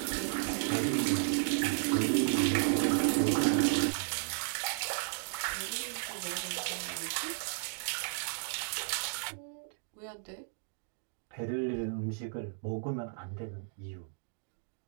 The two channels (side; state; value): left; silent; digital silence